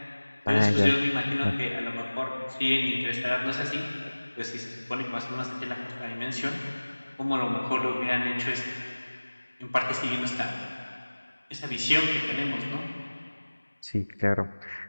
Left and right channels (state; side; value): inverted; both; correlation -1.00